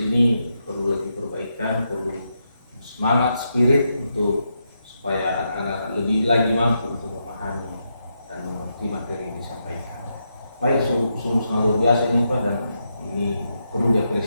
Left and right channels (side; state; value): both; inverted; correlation -0.83